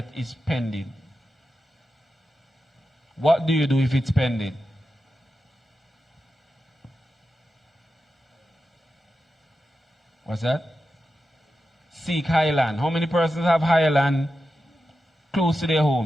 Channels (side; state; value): both; normal; correlation 0.90